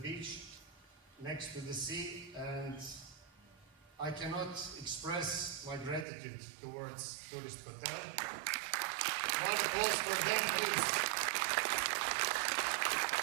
next to the sea. And I cannot express my gratitude towards Tourist Hotel. One applause for them, please.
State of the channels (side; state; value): left; drops out; at 6.1 s